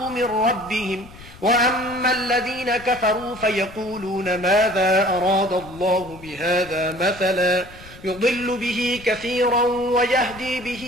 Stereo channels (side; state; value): left; noise; rumble, 19 dB below the sound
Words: من ربهم وأما الذين كفروا فيقولون ماذا أراد الله بهذا مثلا يضل به كثيرا ويهدي